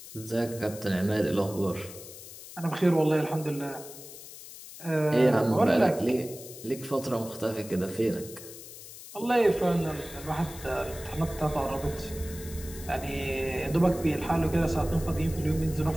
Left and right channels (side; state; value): left; noise; hiss, 15 dB below the sound